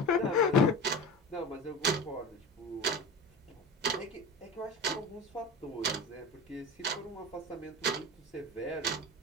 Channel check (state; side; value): normal; both; correlation 0.30